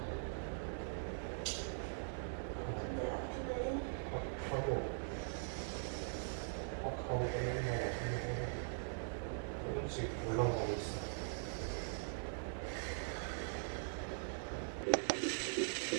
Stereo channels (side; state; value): left; silent; digital silence